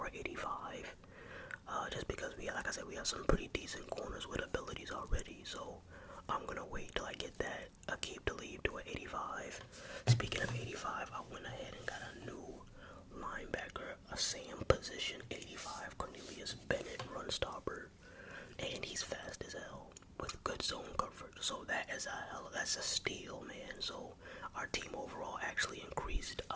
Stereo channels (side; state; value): both; identical; correlation 1.00